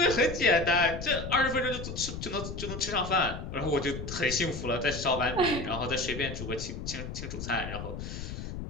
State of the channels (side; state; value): left; noise; rumble, 7 dB below the sound